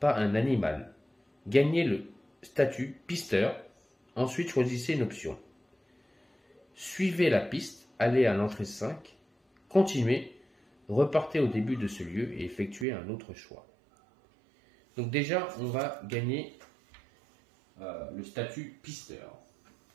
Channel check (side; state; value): left; drops out; at 12.9 s